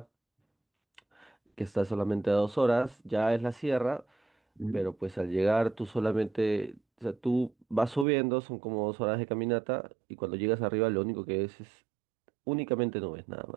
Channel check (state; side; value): drops out; left; at 8.1 s